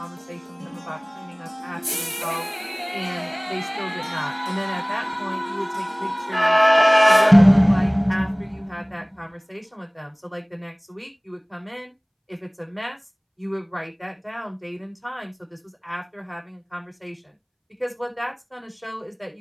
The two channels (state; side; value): identical; both; correlation 1.00